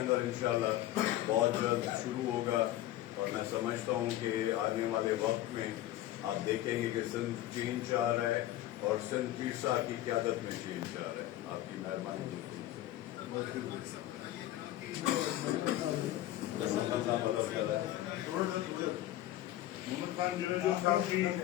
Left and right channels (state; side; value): quieter; right; 14.5 dB